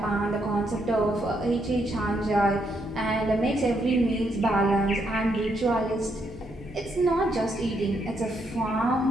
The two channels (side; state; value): both; normal; correlation 0.76